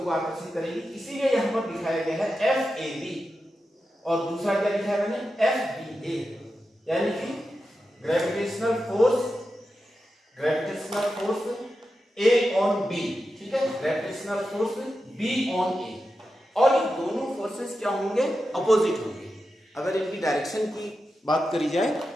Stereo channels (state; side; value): normal; both; correlation 0.90